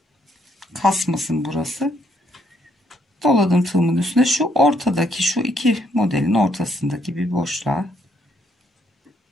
kasmasın burası. Doladım tığımın üstüne, şu ortadaki, şu iki modelin ortasındaki bir boşluğa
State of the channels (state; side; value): normal; both; correlation 0.71